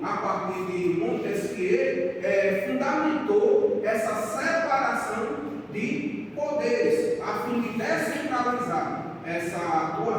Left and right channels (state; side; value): identical; both; correlation 1.00